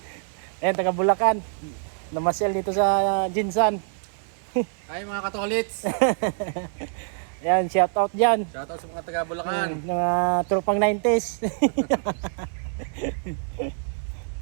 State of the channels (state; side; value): silent; left; 59 dB below the other